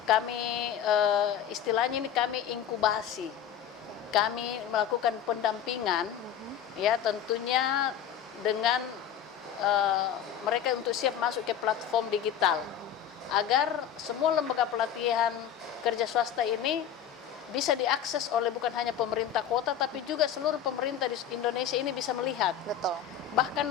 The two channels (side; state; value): right; quieter; 9.2 dB